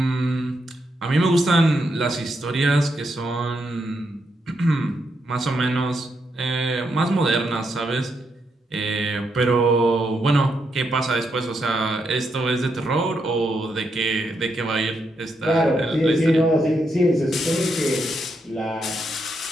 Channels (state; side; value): normal; both; correlation 0.80